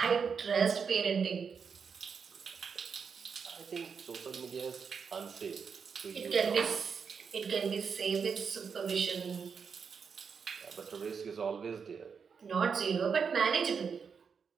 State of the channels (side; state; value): left; quieter; 6.1 dB